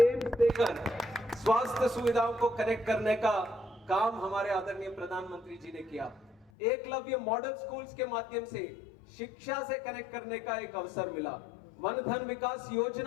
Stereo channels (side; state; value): right; drops out; at 6.5 s